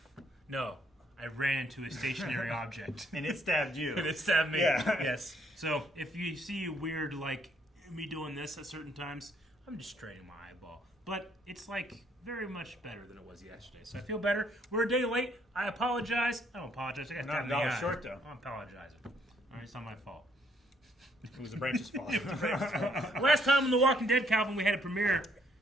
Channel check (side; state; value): both; normal; correlation 0.68